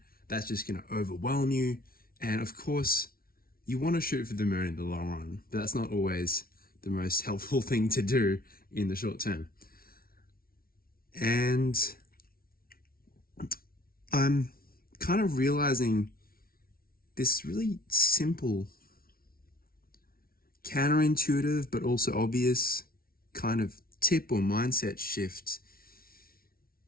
that's just going to overwhelm you. And of course, you want to shoot for the moon in the long run, but that's not always the most helpful thing to do in the short term. And I'm kind of realizing this really simple, counterintuitive, but also obvious kind of tip or mindset shift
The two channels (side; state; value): right; late; 0.43 ms